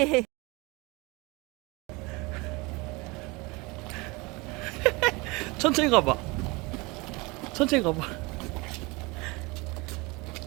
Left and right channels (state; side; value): quieter; left; 25.3 dB